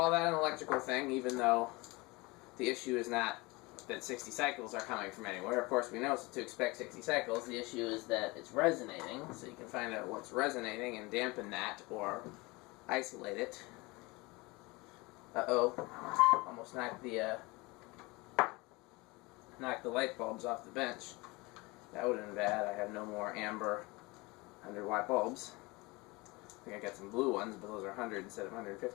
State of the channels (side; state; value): right; quieter; 24.1 dB